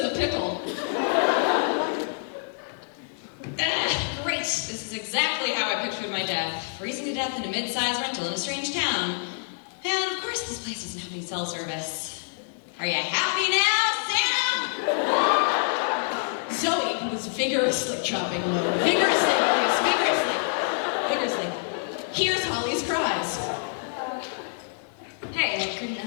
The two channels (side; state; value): right; silent; 60 dB below the other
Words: a pickle. Great. This is exactly how I pictured my death. Freezing to death in a mid-sized rental in a strange town. And of course this place doesn't have any cell service. Are you happy now, Sam? Zoe, who was vigorously chopping wood, vigorously, hears Holly's cries. Hey, I couldn't